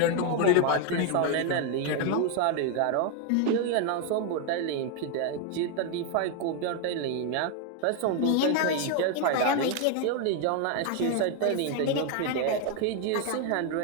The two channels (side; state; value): both; different; correlation 0.01